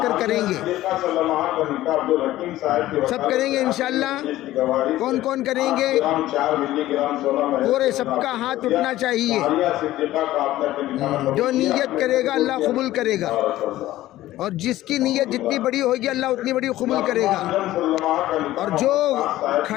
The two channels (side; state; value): right; quieter; 15.3 dB